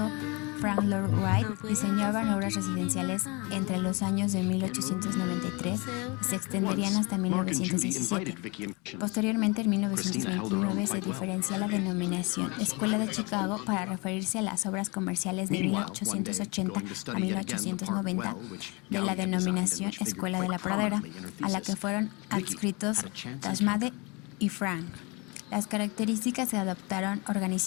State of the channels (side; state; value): right; quieter; 28.4 dB